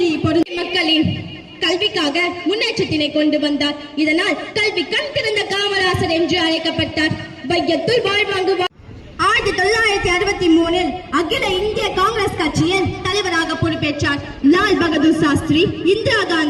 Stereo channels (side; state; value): both; identical; correlation 1.00